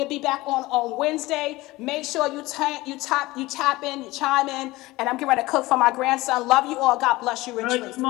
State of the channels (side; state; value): right; quieter; 19.7 dB